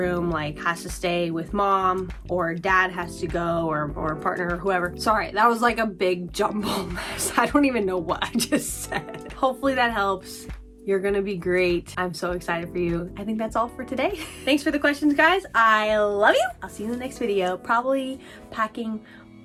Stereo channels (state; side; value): identical; both; correlation 1.00